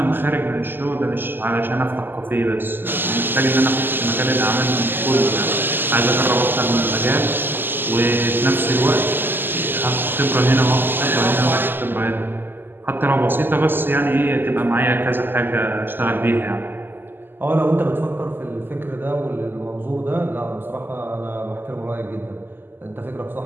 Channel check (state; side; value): late; left; 0.095 ms